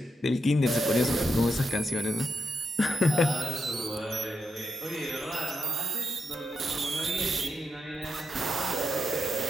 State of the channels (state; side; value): normal; both; correlation 0.84